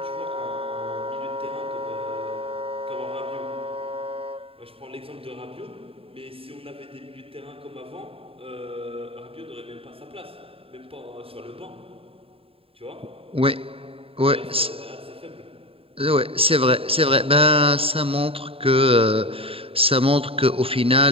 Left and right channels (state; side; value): late; left; 0.27 ms